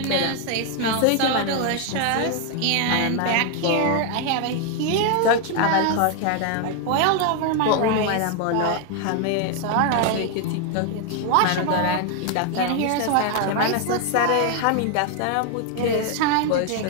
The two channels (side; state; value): both; different; correlation 0.00